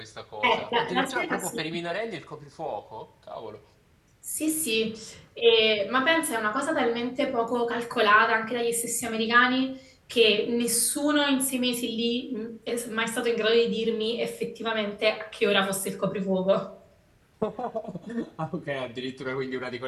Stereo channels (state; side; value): identical; both; correlation 1.00